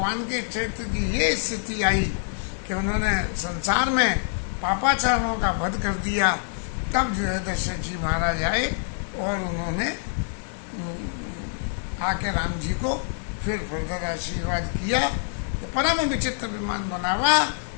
के चरित्र की ये स्थिति आई कि उन्होंने संसार में पापाचारों का वध कर दिया, तब जो है दशरथ जी महाराज आए और उन्होंने आके राम जी को फिर फर्दर आशीर्वाद किया। तो परम विचित्र विमान बनावा,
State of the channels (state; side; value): silent; right; digital silence